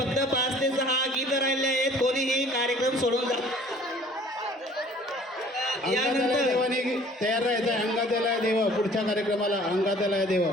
5 ते 6 गीत राहिले आहेत. कोणीही कार्यक्रम सोडून जा. यानंतर देवाने तयार राहायचं. अंगातला देव पुढच्या कार्यक्रमाला अंगातला देव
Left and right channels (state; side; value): normal; both; correlation 0.52